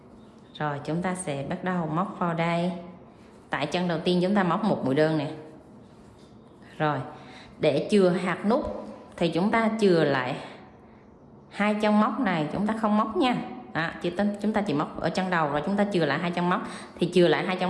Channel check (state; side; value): identical; both; correlation 1.00